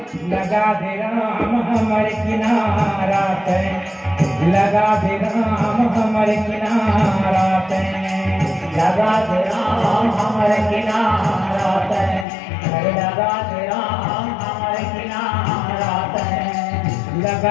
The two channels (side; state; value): right; drops out; at 12.2 s